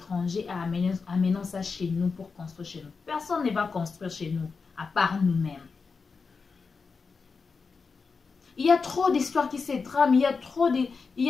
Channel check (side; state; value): right; quieter; 4.8 dB